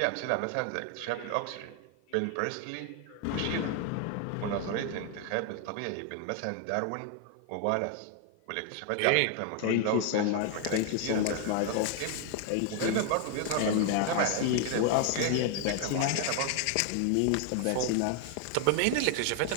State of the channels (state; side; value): different; both; correlation 0.00